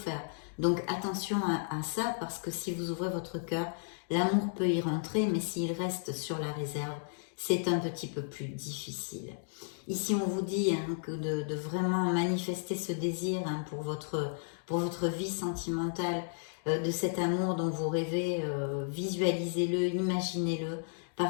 Donc attention à ça, parce que si vous ouvrez votre cœur, l'amour peut y rentrer, mais s'il reste sur la réserve, c'est un petit peu plus difficile. Ici, on vous dit que de vraiment manifester ce désir pour votre vie sentimentale, de cet amour dont vous rêvez, visualisez-le, imaginez-le,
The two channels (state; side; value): silent; right; digital silence